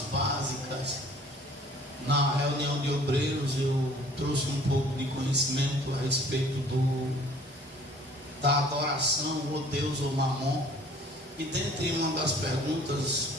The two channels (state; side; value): normal; both; correlation 0.53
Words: básicas. Na reunião de obreiros eu trouxe um pouco de conhecimento a respeito da adoração, ou Deus ou Mamon. E dentre uma das perguntas